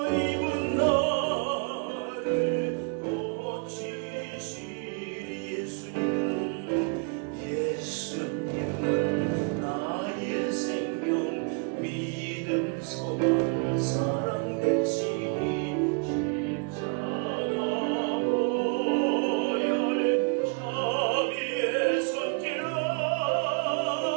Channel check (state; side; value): quieter; left; 36.8 dB